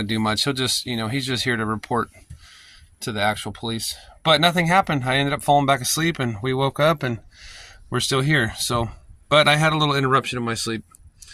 to do much. He'll just, he's just here to report to the actual police. But nothing happened. I ended up falling back asleep, and we woke up and we're still here. So, but I had a little interruption in my sleep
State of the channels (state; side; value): identical; both; correlation 1.00